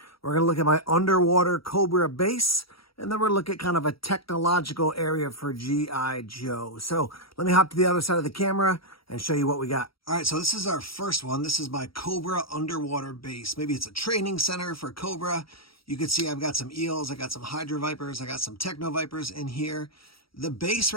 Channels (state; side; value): late; right; 0.75 ms